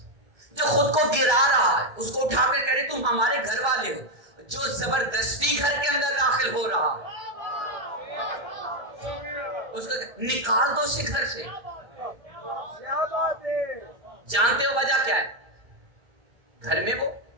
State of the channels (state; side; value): late; left; 1.3 ms